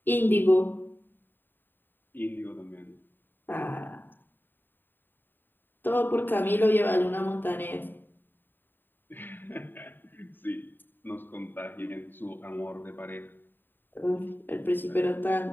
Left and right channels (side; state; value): right; late; 0.093 ms